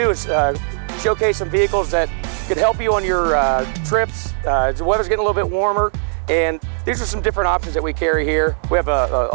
is showcase some vehicles that could help you on your trips. The weather's getting a little bit warmer, and these are some different options that we carry here. We have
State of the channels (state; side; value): silent; left; 67 dB below the other